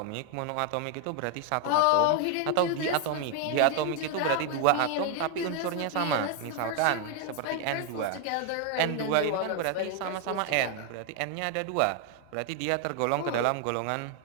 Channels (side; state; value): both; different; correlation 0.01